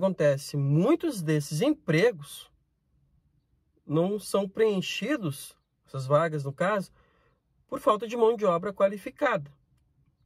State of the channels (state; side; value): identical; both; correlation 1.00